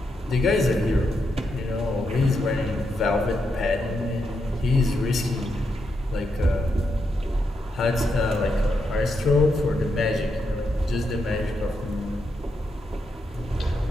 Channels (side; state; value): both; normal; correlation 0.83